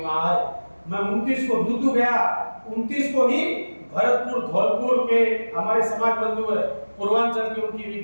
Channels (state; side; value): inverted; both; correlation -1.00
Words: वहां आए। मैं 29 को दूदू गया, 29 को ही भरतपुर धौलपुर के हमारे समाज बंधु है पूर्वांचल की, उनकी